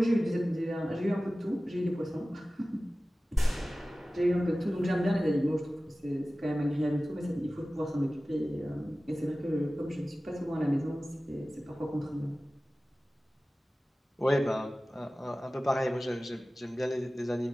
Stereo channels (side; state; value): both; normal; correlation 0.97